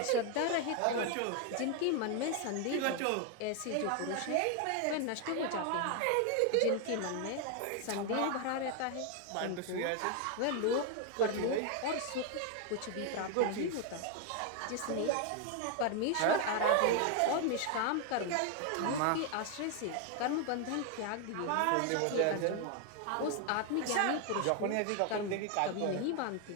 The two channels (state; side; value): different; both; correlation 0.01